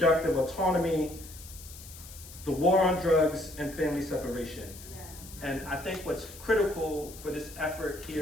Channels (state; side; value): noise; left; hiss, 16 dB below the sound